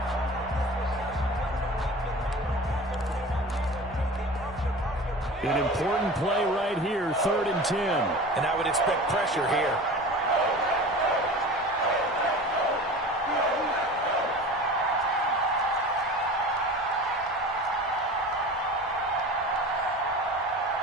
An important play right here, 3rd and 10. And I would expect pressure here.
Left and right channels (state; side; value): normal; both; correlation 0.36